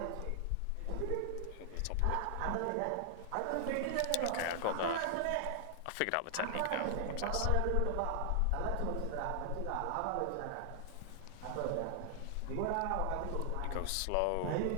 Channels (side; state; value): both; different; correlation 0.00